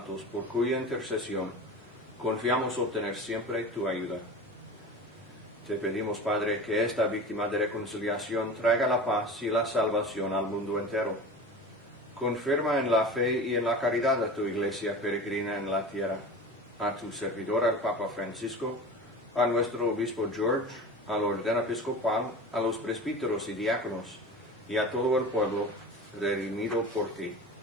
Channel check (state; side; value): normal; both; correlation 0.34